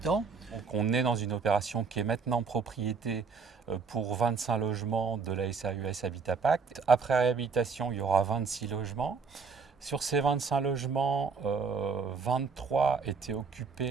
Donc on est dans une opération qui est maintenant propriété pour 25 logements de la SAS Habitat Pacte. Après réhabilitation, il y aura 26 logements. Sur ces 25 logements, 23 étaient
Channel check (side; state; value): left; quieter; 5.3 dB